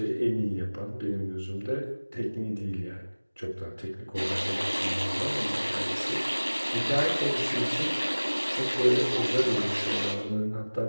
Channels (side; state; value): both; inverted; correlation -1.00